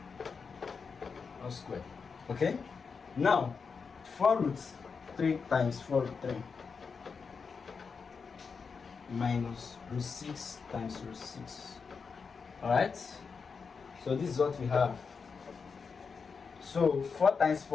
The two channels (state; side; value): quieter; right; 5.4 dB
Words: all squared. Okay, now 4 root 3 times 4 root 3 minus root 6 times root 6. All right, so this is what we have. So 4 times